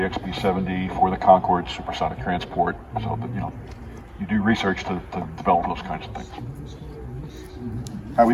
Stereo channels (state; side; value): identical; both; correlation 1.00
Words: XB-70, for the Concorde supersonic transport. So that, you do research to develop those kinds of things. How